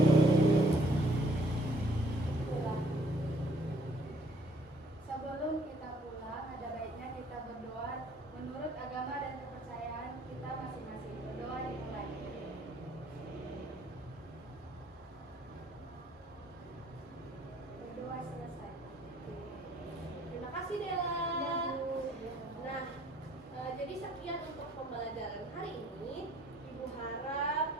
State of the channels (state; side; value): normal; both; correlation 0.61